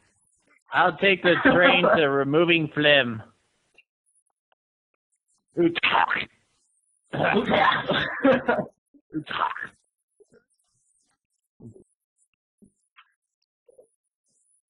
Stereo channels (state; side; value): identical; both; correlation 1.00